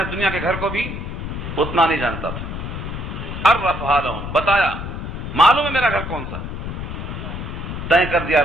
دنیا کے گھر کو بھی اتنا نہیں جانتا تھا۔ عرفہا لہم، بتایا، معلوم ہے میرا گھر کون سا، طے کر دیا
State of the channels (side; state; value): left; noise; rumble, 6 dB below the sound